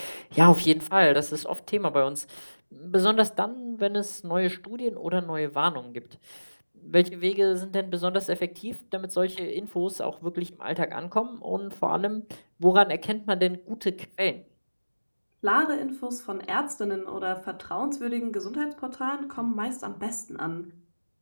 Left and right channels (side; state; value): both; inverted; correlation -1.00